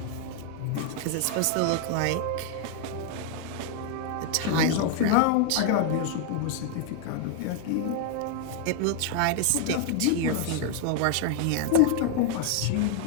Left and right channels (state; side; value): different; both; correlation 0.00